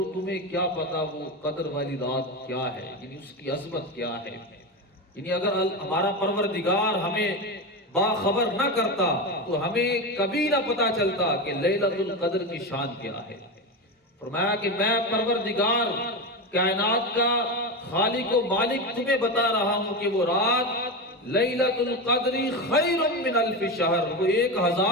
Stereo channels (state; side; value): normal; both; correlation 0.18